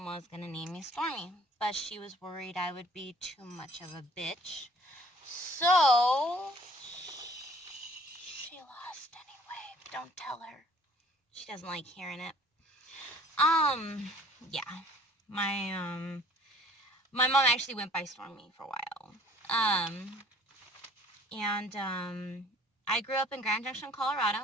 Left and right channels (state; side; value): normal; both; correlation 0.54